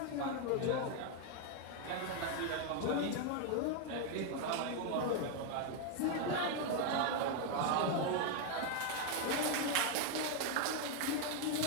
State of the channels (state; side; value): different; both; correlation 0.01